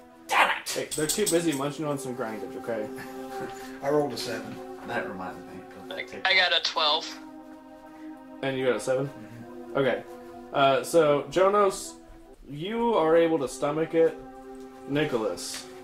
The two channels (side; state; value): both; identical; correlation 1.00